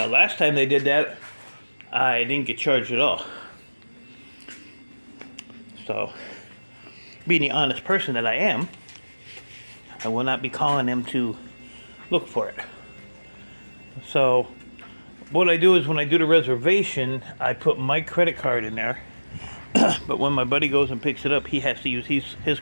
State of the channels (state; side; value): inverted; both; correlation -1.00